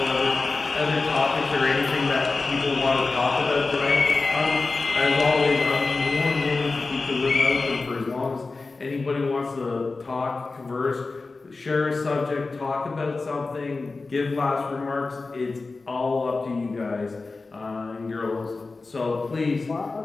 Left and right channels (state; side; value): quieter; right; 3.8 dB